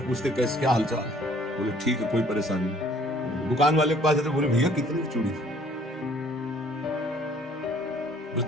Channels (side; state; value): both; normal; correlation 0.58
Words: कैसे, क्या हालचाल है? बोले ठीक है, कोई परेशानी नहीं। दुकान वाले के पास जाते, बोले भैया कितनी चूड़ी थी? बस